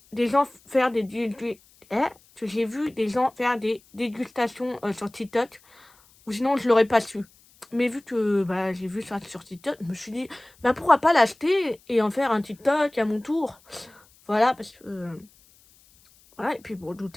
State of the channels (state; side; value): noise; left; hiss, 29 dB below the sound